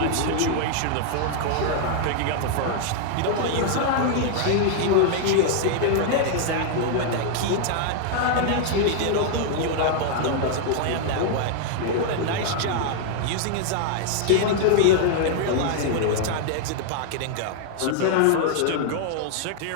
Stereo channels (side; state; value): both; different; correlation 0.00